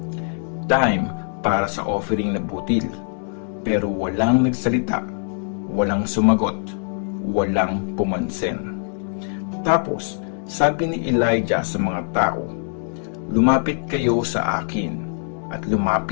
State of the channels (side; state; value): right; silent; 64 dB below the other